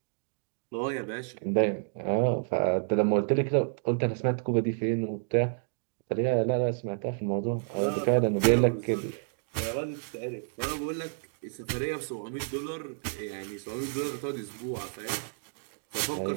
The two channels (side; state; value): left; silent; digital silence